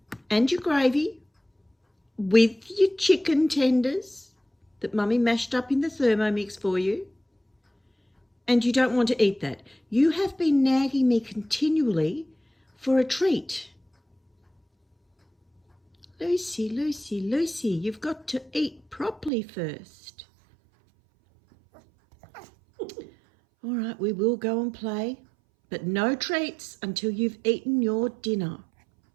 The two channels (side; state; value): left; drops out; at 19.3 s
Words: and your gravy with your chicken tenders that Mummy mashed up in the Thermomix for you? And you don't want to eat that. You have been nagging me continually for a treat. Lucy, you've got to eat properly first. All right, we will go and play, but no treats until you've eaten your dinner.